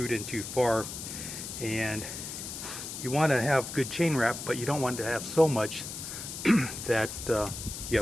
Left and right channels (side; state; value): left; noise; hiss, 8 dB below the sound